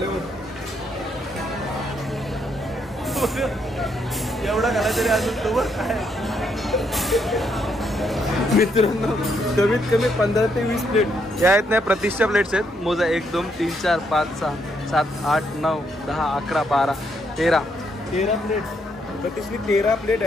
एवढा घाला तरी अजून तो काय मित्रांनो कमीत कमी 15 ते 20 प्लेट या आहेत नाही. प्रतिष्ठा प्लेट्स आहेत. मोजा 1 2 3 4 5 6 7 8 9 10 11 12 13 प्लेट. प्रतिष्ठी 13 प्लेट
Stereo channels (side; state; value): both; normal; correlation 0.75